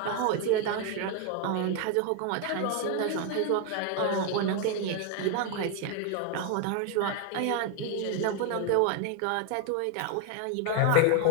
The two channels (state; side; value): different; both; correlation 0.01